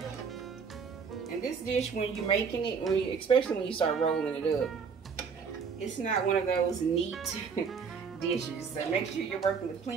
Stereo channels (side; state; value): left; quieter; 5.9 dB